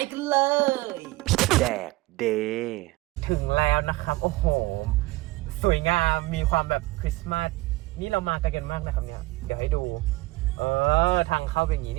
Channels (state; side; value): quieter; left; 20.1 dB